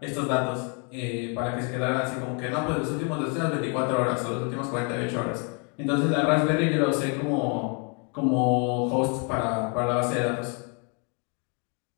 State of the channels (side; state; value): right; quieter; 36.8 dB